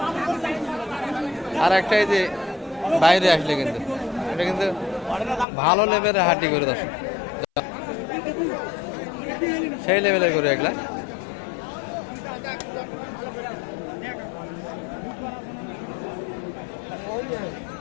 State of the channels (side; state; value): right; drops out; at 5.5 s